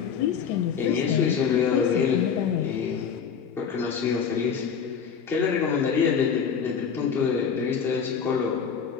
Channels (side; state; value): right; quieter; 6.9 dB